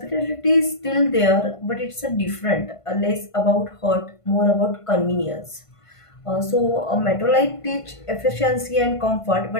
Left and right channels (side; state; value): right; late; 1.5 ms